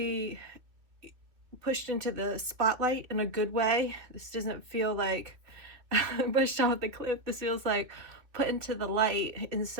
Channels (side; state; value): left; late; 2.7 ms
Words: pushed into the spotlight in a good way. This doesn't feel like pushed off the cliff. This feels like put into the light in